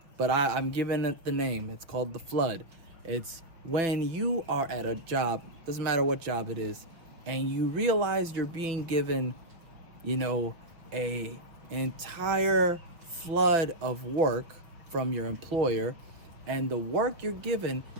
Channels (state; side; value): late; left; 5.8 ms